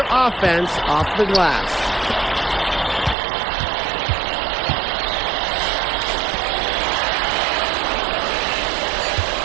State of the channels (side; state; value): left; drops out; at 3.2 s